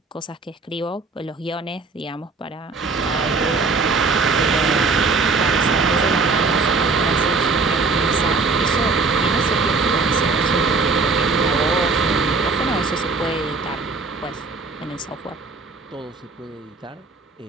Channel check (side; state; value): left; quieter; 4.1 dB